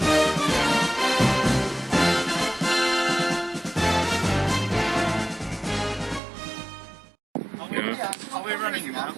Are we running now?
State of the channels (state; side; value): drops out; left; at 6.2 s